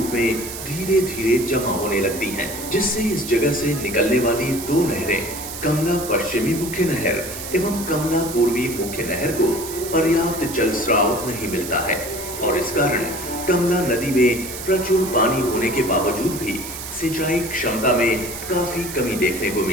में धीरे धीरे जमा होने लगती हैं, जिससे इस जगह से निकलने वाली दो नहरें, कमला पश्चिमी मुख्य नहर एवं कमला पूर्वी मुख्य नहर को पर्याप्त जल स्राव नहीं मिलता है और इस कारण कमला नदी में प्रचुर पानी होने के बावजूद भी सिंचाई क्षमता में काफी कमी देखने को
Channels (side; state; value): right; noise; hiss, 9 dB below the sound